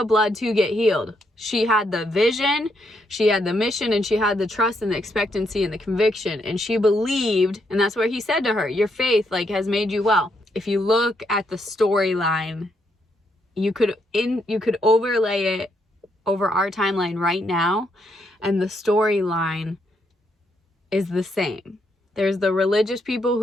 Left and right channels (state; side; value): normal; both; correlation 0.76